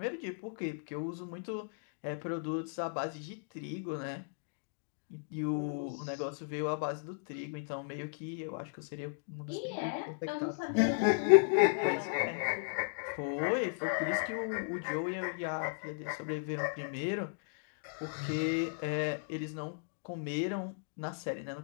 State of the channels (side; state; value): right; silent; digital silence